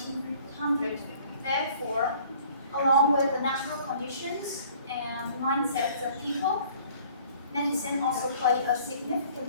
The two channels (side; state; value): both; inverted; correlation -0.54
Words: Therefore, along with the natural conditions and mindsets of people, medicine also plays a